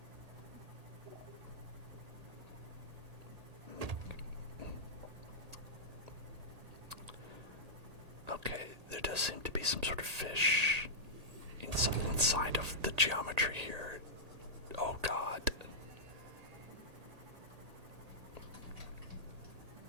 Okay, there does seem to be some sort of fish inside of the geometry here. Oh god.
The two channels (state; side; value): late; left; 1.9 ms